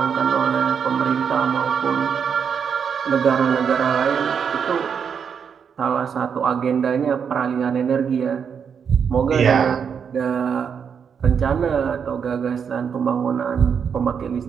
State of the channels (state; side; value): quieter; left; 7.0 dB